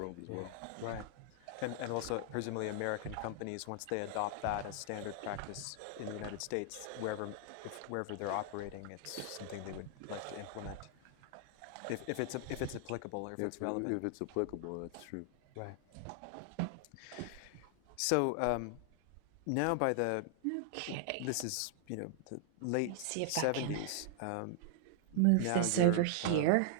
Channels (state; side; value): different; both; correlation 0.00